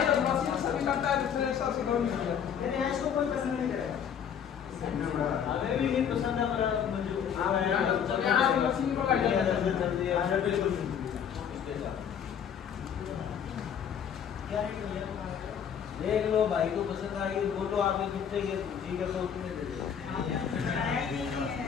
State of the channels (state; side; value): quieter; right; 8.1 dB